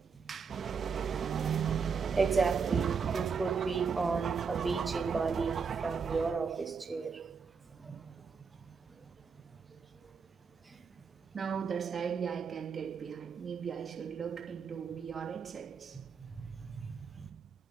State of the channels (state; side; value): quieter; left; 5.7 dB